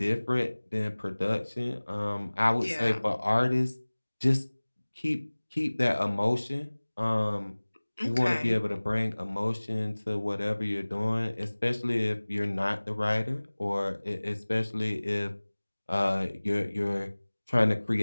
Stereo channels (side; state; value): both; inverted; correlation -1.00